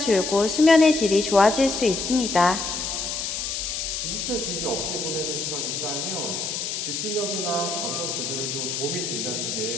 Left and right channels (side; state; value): left; noise; hiss, 3 dB below the sound